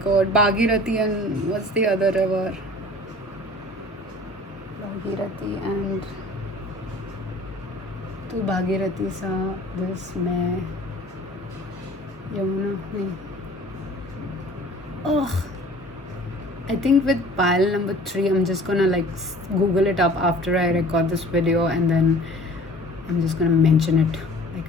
Bhagirathi and what's the other river? Bhagirathi and तू भागीरथी सा this मैं यमुना नहीं. Oh, I think with pile number 3, I'm just gonna like Google it up after I record this video, and then I'm just gonna mention it.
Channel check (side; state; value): both; normal; correlation 0.47